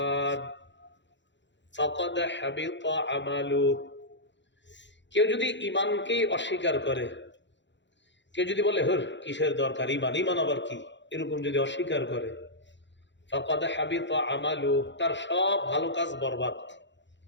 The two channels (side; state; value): right; late; 0.52 ms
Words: ফাকাদ হাবিতা আমালুহু। কেউ যদি ঈমানকে অস্বীকার করে, কেউ যদি বলে হর কিসের দরকার ঈমান, ঈমান আবার কি, এরকম যদি অস্বীকার করে, ফাকাদ হাবিতা আমালুহু, তার সব ভালো কাজ বরবাদ।